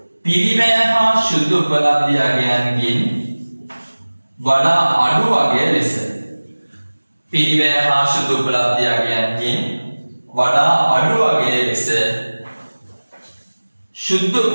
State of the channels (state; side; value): inverted; both; correlation -1.00